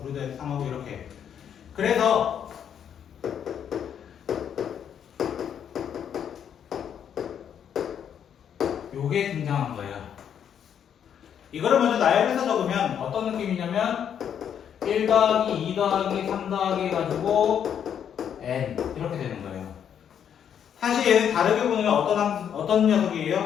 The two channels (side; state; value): right; quieter; 8.6 dB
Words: 9를 더해서 3하고 이렇게. 그래서 요게 등장한 거예요. 이거를 먼저 나열해서 적으면 어떤 느낌이냐면 1 더하기 2 더하기 3 더하기 해가지고 n 이렇게 되는 거예요. 사실 얘는 다르게 보면 어떤